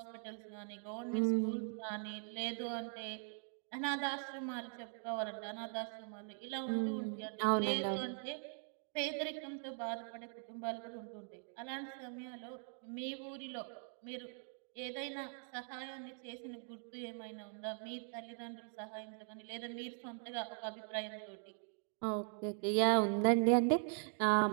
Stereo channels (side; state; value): left; silent; 50 dB below the other